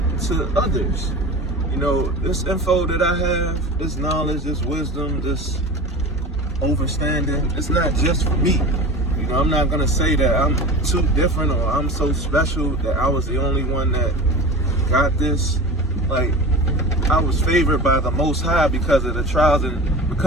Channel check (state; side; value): normal; both; correlation 0.32